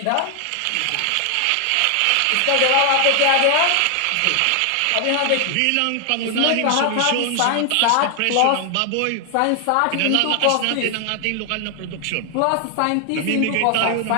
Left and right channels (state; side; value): different; both; correlation 0.00